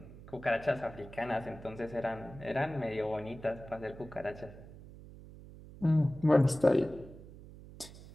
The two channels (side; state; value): right; noise; hum, 17 dB below the sound